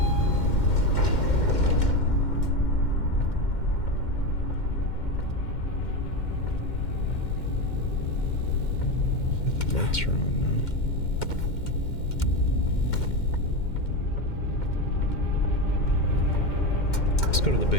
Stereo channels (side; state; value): right; late; 2.1 ms